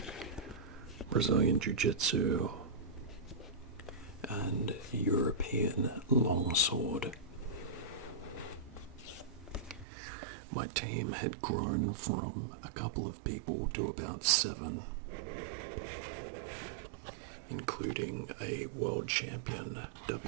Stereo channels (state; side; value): drops out; left; at 9.9 s